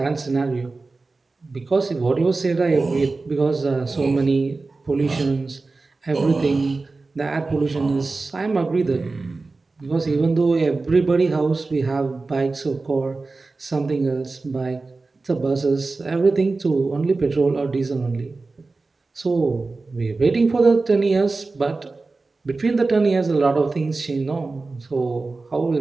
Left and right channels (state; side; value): quieter; left; 3.7 dB